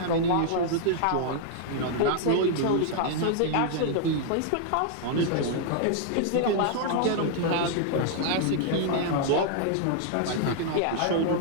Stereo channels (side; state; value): both; different; correlation -0.01